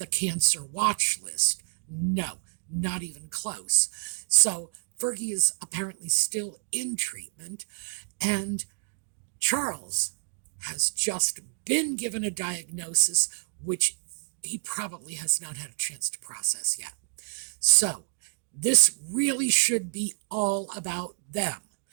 cancer watch list. No, not even close. So Fergie is apparently still in treatment, and Charles has just been given a diagnosis which he probably has not had a chance to process yet. So this really should be all about them.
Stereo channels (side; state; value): left; silent; digital silence